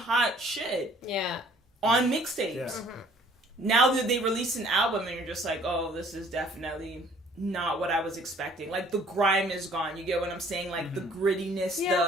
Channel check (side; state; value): both; normal; correlation 0.56